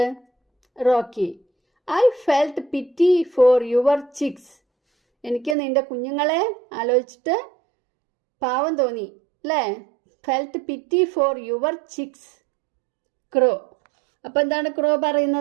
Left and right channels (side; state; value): left; drops out; at 5.6 s